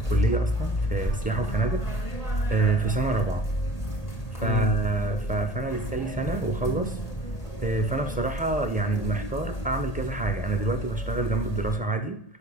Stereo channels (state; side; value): late; right; 1.8 ms